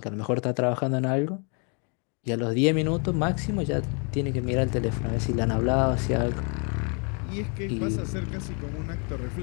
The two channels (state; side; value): quieter; right; 38.0 dB